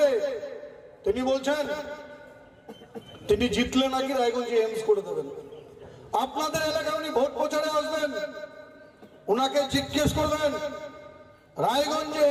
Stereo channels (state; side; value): identical; both; correlation 1.00